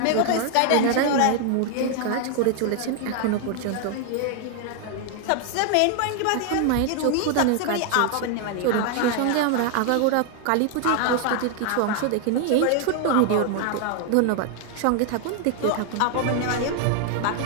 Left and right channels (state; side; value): different; both; correlation 0.00